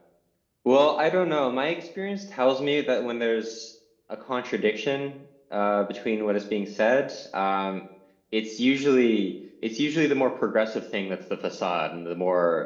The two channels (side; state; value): both; identical; correlation 1.00